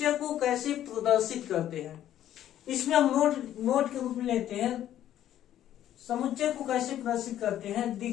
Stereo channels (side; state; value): right; quieter; 11.7 dB